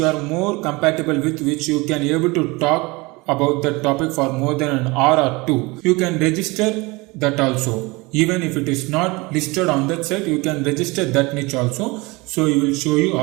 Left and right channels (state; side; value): quieter; left; 24.5 dB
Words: you are more compatible with, which you can able to talk about the topic for more than an hour or 2. You can register that also. Even if it is not listed on that site, you can register that niche also. So he will show you